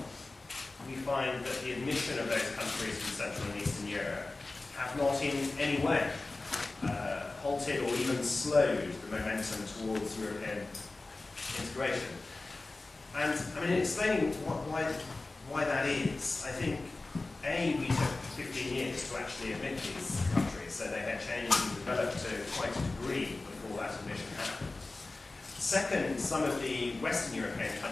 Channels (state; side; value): quieter; right; 3.3 dB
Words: we find that the admission of those countries from Central and Eastern Europe have not in any way halted or even slowed the momentum towards European integration. And I mean, in explaining why that is, I think, A, we took 15 years to actually admit these countries, so they had changed and developed to quite a degree before that admission happened. Second, some of the Western European